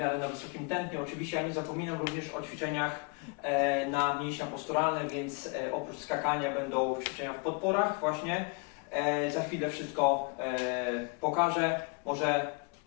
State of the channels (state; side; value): quieter; right; 32.7 dB